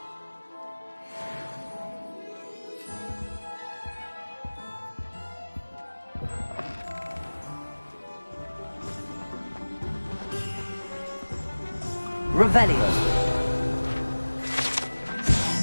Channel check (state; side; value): inverted; both; correlation -1.00